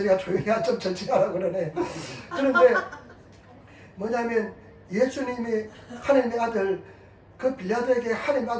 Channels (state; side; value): identical; both; correlation 1.00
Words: 조용히 좀 천천히 하라고 그러네. 그런데, 뭐냐면, 예수님이 하나님의 아들, 그 빌라도에게 하나님의